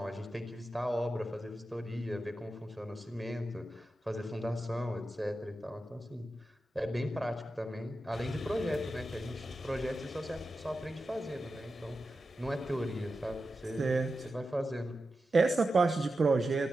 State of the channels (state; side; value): normal; both; correlation 0.91